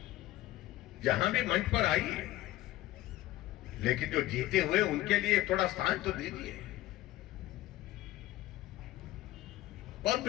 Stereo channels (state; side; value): quieter; right; 16.0 dB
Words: जहां भी मंच पर आइए, लेकिन जो जीते हुए उनके लिए थोड़ा स्थान तो दीजिए। बहुत